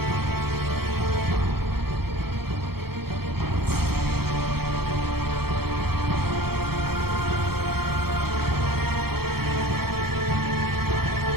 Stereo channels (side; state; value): left; late; 0.95 ms